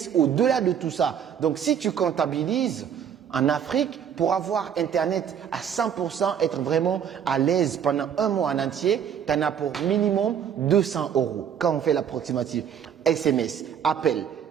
au-delà de tout ça. Donc si tu comptabilises, en Afrique, pour avoir Internet à 100%, être vraiment à l'aise pendant un mois en entier, tu en as pour minimum 200 euros quand on fait l'approximative. SMS, appel,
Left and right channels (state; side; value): quieter; left; 8.4 dB